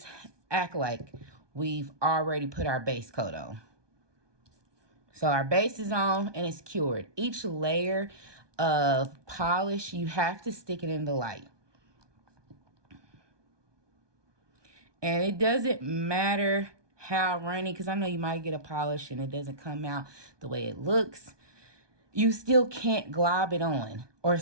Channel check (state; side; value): late; left; 1.2 ms